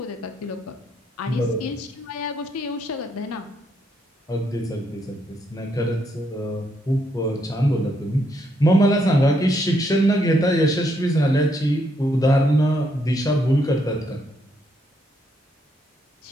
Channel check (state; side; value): normal; both; correlation 0.75